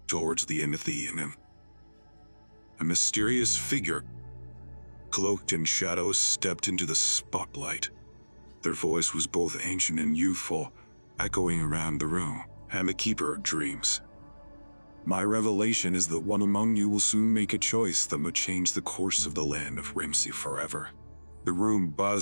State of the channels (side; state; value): both; inverted; correlation -1.00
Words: Towards the end of the evening, a mysterious figure, cloaked in shadows, stepped into the spotlight. Their voice was both ancient and youthful, echoing around the room. I'm the Keeper of Dreams. My revelation is that one among you will soon make a choice that would change the course of the land of whimsy forever. The room